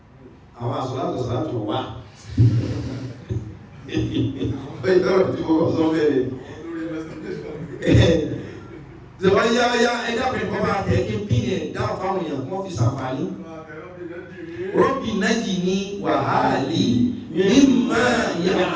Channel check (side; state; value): both; identical; correlation 1.00